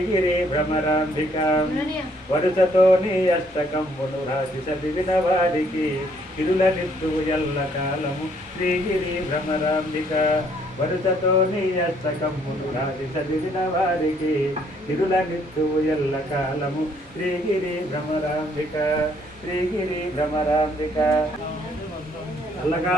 భ్రమరాంబిక వరుసతో నీ అష్టకంబును రాసి చదివిన వారికి ఇరుల నిత్యువు ఎల్ల కాలము శ్రీగిరి భ్రమరాంబిక వరుసతో నీ అష్టకంబును రాసి చదివిన వారికి ఇరుల నిత్యువు ఎల్ల కాలము శ్రీగిరి భ్రమరాంబిక శ్రీగిరి భ్రమరాంబిక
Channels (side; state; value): both; normal; correlation 0.66